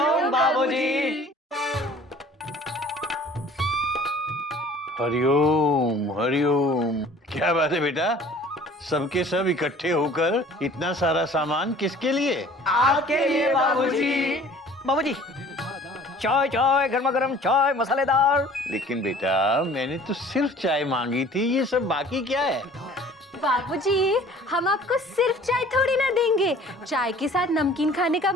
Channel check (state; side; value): normal; both; correlation 0.49